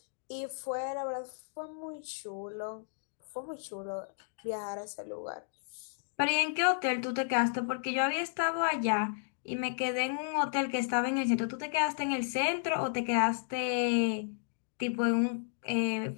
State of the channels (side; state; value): right; silent; digital silence